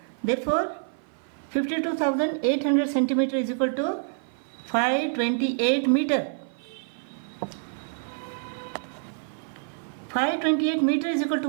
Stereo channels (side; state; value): left; silent; 55 dB below the other